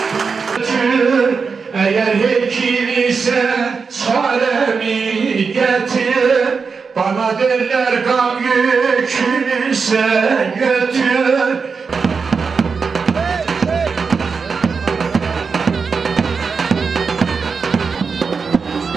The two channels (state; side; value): quieter; left; 5.2 dB